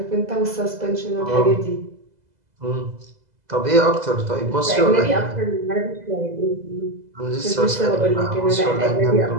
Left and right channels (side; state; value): left; late; 2.0 ms